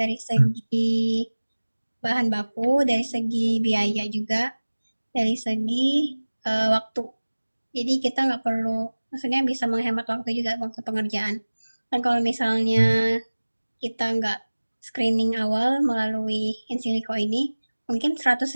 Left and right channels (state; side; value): inverted; both; correlation -1.00